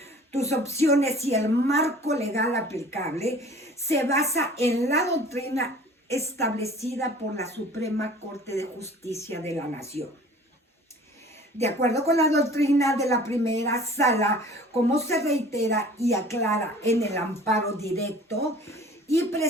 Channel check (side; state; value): both; normal; correlation 0.47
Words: tus opciones y el marco legal aplicable se basa en la doctrina establecida por la Suprema Corte de Justicia de la Nación. De acuerdo con la doctrina de la primera sala, como se reitera y aclara en el amparo directo y